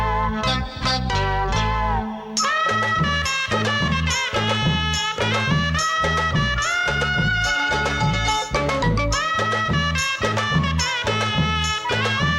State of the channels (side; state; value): both; identical; correlation 1.00